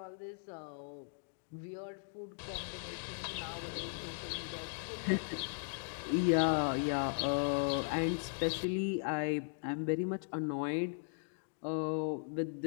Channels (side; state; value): right; silent; digital silence